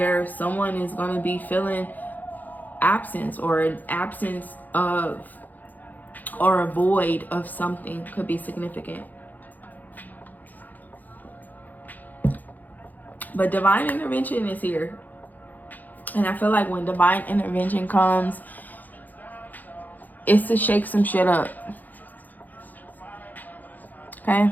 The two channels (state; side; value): late; right; 0.083 ms